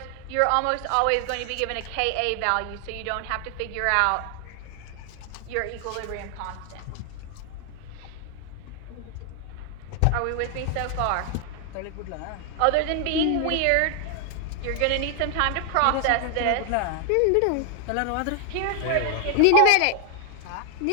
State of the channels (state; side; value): different; both; correlation 0.00